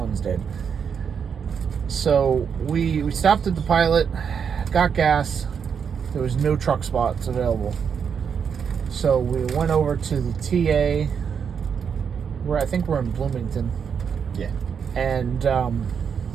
dead. So we stopped at the Pilot, got gas. There was no truck spots available. So we went over to the TA, where I think we're in Bloomington. Yeah. And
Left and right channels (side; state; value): left; quieter; 6.9 dB